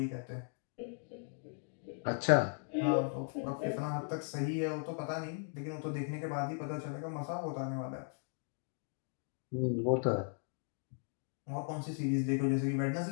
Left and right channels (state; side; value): silent; right; 53 dB below the other